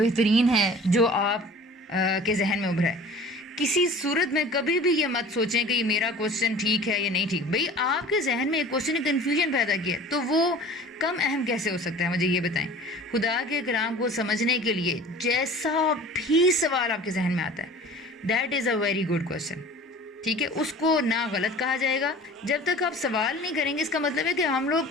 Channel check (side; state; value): both; normal; correlation 0.43